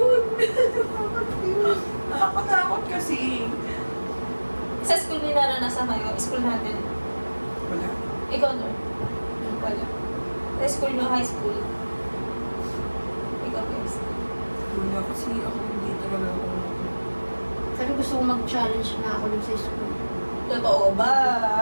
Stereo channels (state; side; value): inverted; both; correlation -1.00